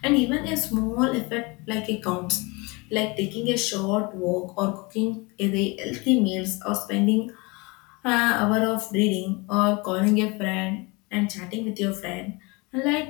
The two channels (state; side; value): quieter; right; 26.9 dB